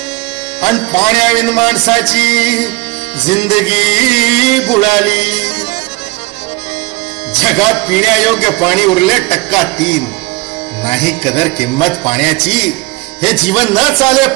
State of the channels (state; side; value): quieter; left; 22.9 dB